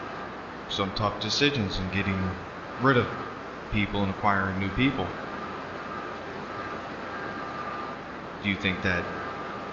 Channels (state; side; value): identical; both; correlation 1.00